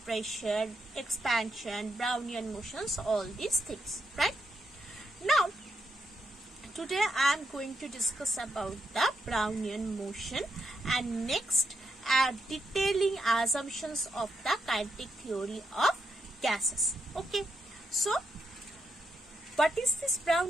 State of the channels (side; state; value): both; normal; correlation 0.81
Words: pressure, expansion, Brownian motions, all these things, right? Now today I am going to discuss about the Brownian motion and next detailing assumptions of the kinetic theory of gases. Okay, so what is this